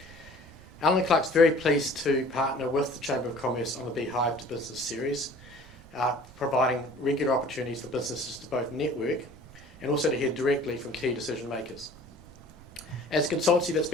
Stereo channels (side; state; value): both; normal; correlation 0.49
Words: Alan Clark's very pleased to partner with the Chamber of Commerce on the Beehive to Business series, providing regular opportunities for businesses to both network and also to hear directly from key decision makers. As a consultancy that's